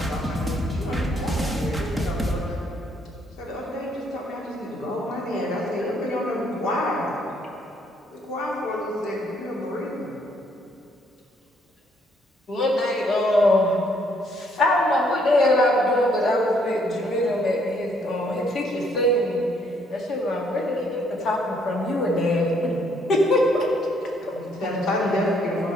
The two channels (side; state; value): both; normal; correlation 0.68